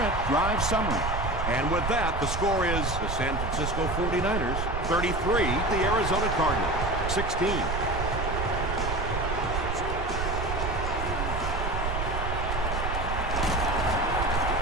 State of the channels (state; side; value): noise; right; rumble, 2 dB below the sound